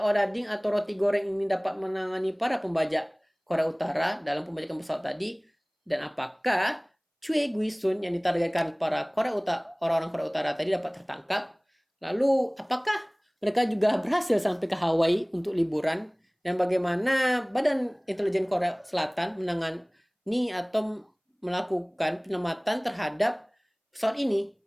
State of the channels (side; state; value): both; identical; correlation 1.00